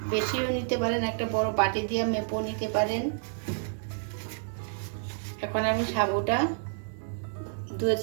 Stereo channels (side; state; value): left; silent; digital silence